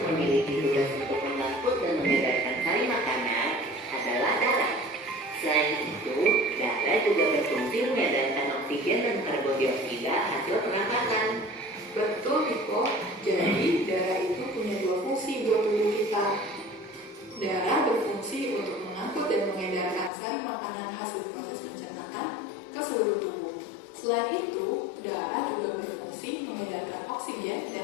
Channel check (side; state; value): right; drops out; at 20.1 s